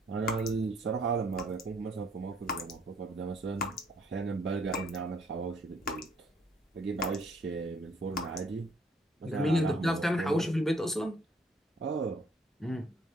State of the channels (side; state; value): both; normal; correlation 0.63